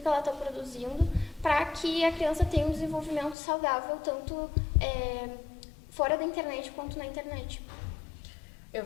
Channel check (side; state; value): right; drops out; at 3.4 s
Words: ela está produzindo, para que a criança tenha um desenvolvimento saudável, tanto fora da internet quanto na internet. Eu